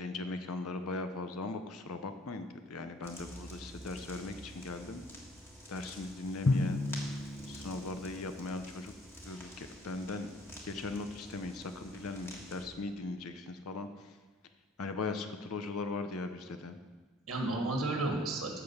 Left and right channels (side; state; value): both; normal; correlation 0.57